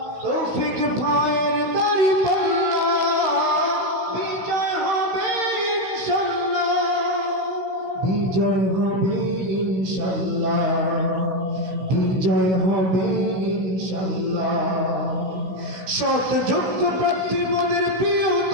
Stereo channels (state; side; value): late; left; 16 ms